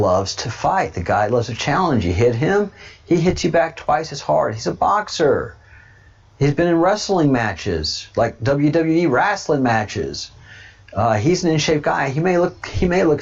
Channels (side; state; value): both; identical; correlation 1.00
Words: to fight. The guy loves a challenge. You hit him, he hits you back twice as hard. He's a boxer. He's been in wrestling matches, like WWE wrestling matches. He's an in-shape guy. He may look